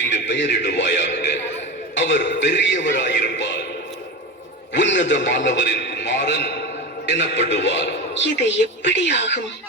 பெயரிடுவாயாக. அவர் பெரியவராயிருப்பார், உன்னதமானவரின் குமாரன் எனப்படுவார். இது எப்படி ஆகும்?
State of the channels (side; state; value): both; normal; correlation 0.23